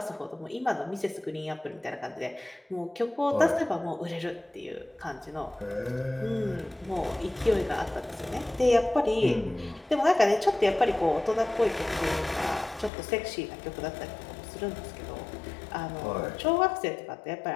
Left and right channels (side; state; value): right; drops out; at 12.9 s